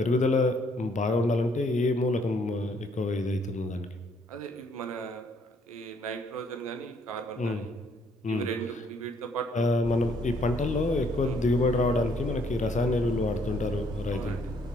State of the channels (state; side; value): normal; both; correlation 0.66